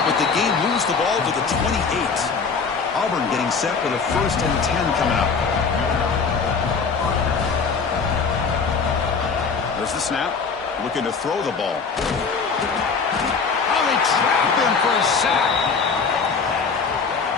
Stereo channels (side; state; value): right; quieter; 5.3 dB